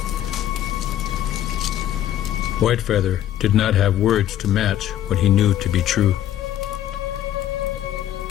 Whitefeather did not have words to match what he knew to be true.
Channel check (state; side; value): quieter; right; 11.7 dB